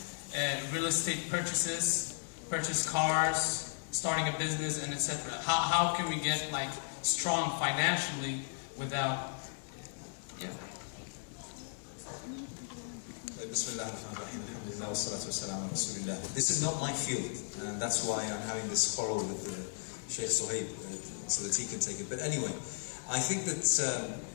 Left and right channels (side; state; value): right; silent; digital silence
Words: real estate purchases, purchase cars, starting a business, and etc. How can we get like strong financially without? Yeah. This is not my field, and that's why I'm having this quarrel with Sheikh Suhaib, so that he can take it. But anyway, I think that